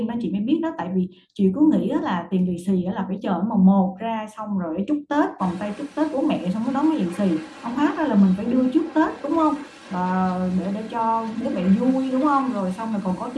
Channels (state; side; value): identical; both; correlation 1.00